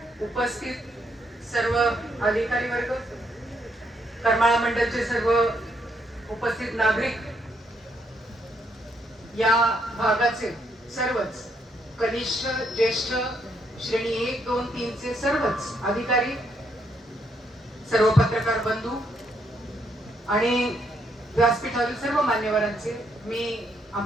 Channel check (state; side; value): normal; both; correlation 0.74